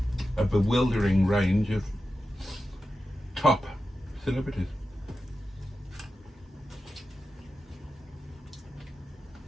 A bewildering range of top celebrities.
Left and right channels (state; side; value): normal; both; correlation 0.92